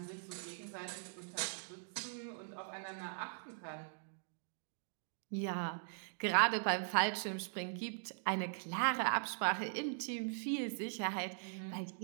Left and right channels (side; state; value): left; silent; digital silence